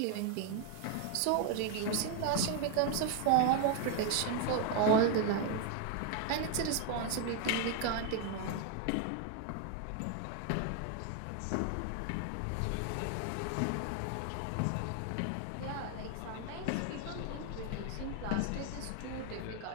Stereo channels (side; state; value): both; different; correlation 0.01